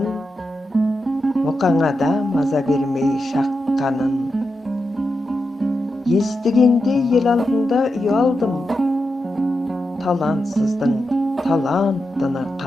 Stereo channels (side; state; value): both; normal; correlation 0.88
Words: мұқаңада маза бермей шаққанын. Естігенде ел алдында ұялдым, талантсыздың талантыны